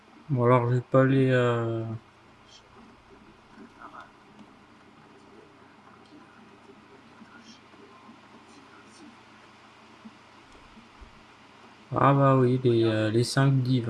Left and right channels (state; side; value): identical; both; correlation 1.00